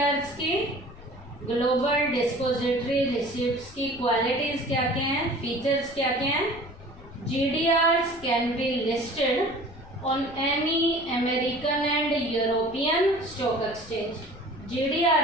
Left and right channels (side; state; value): left; noise; rumble, 20 dB below the sound